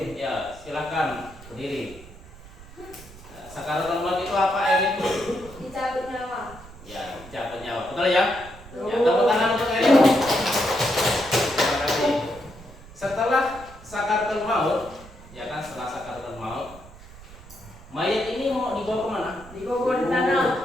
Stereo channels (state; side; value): noise; right; rumble, 19 dB below the sound